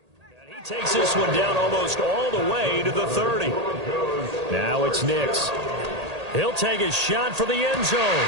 And he takes this one down almost all the way to the 30. Now it's Nix. He'll take a shot for the end zone.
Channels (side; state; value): left; late; 1.8 ms